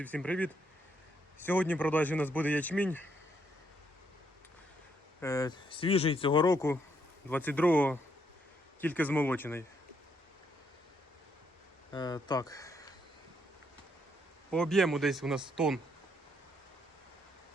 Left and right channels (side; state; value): both; normal; correlation 0.74